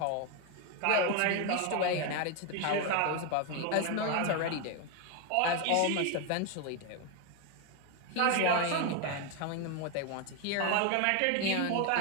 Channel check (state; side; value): different; both; correlation 0.01